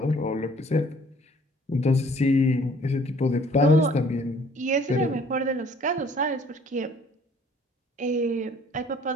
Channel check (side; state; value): both; normal; correlation 0.57